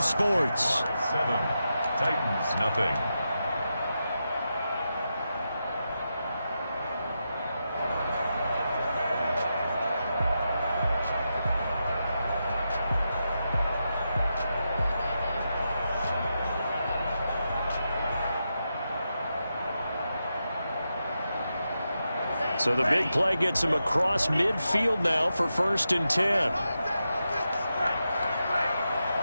7, Titans nothing. So the big play gets him across midfield now for 1st and 10.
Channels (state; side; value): inverted; both; correlation -0.87